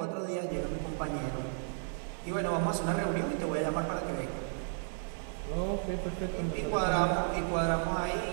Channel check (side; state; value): left; silent; digital silence